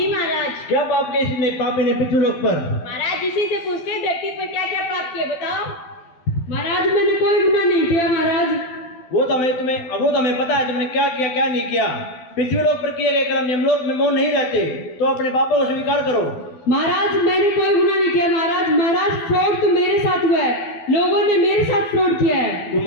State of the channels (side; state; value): right; late; 12 ms